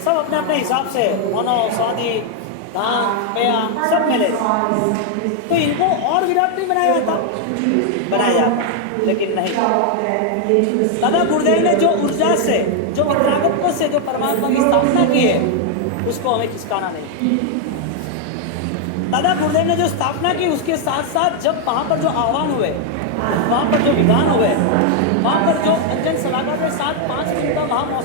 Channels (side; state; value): both; different; correlation 0.00